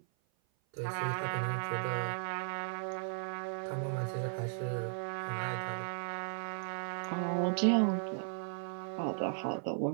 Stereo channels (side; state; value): left; silent; 54 dB below the other